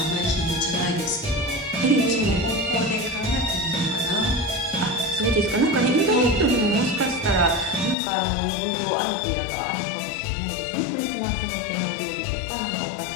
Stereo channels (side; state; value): right; drops out; at 8.0 s